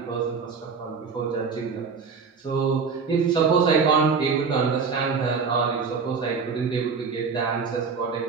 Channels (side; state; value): left; quieter; 5.3 dB